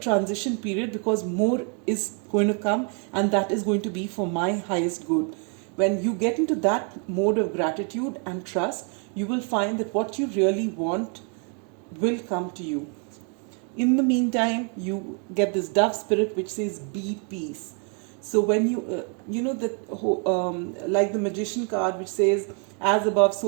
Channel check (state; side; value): quieter; left; 39.9 dB